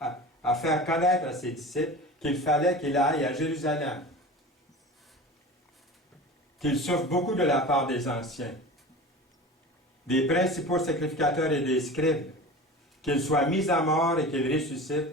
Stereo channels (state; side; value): normal; both; correlation 0.34